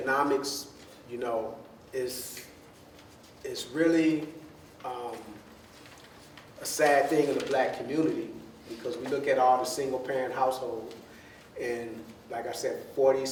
you know, it's really a sad thing in the black community, because we look at all the single parent households, and like I said,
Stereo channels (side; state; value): both; identical; correlation 1.00